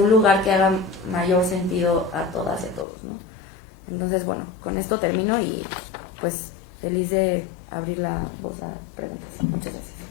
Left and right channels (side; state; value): right; drops out; at 2.9 s